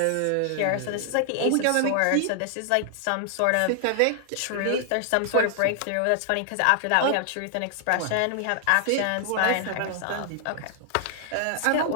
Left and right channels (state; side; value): different; both; correlation 0.00